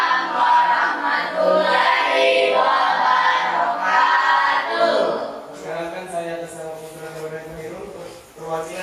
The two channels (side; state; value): both; identical; correlation 1.00